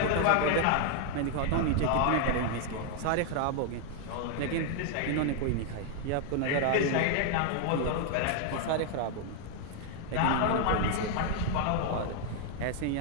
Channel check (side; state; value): both; different; correlation 0.00